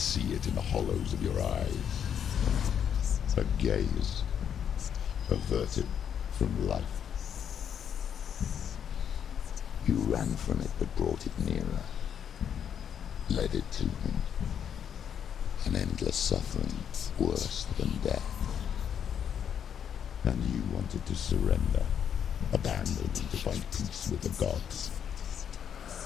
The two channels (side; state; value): right; quieter; 8.4 dB